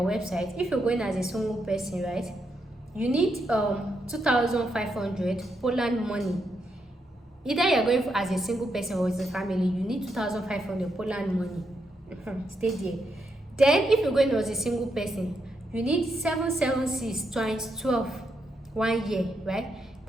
if you're going as a single person, right, you need 2,500 Poland money. Either you're going as a single person or as a family, you need 2,500 Poland money. Stay there. Then if you're going as a single person, you need 776 times 12 1 year, right?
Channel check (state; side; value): normal; both; correlation 0.81